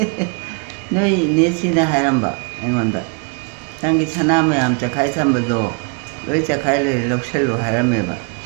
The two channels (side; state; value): left; quieter; 36.5 dB